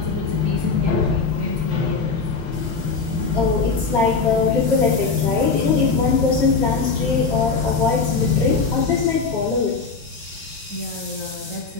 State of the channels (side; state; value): right; quieter; 4.6 dB